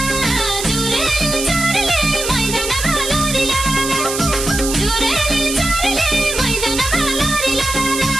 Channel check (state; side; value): noise; right; hiss, 4 dB below the sound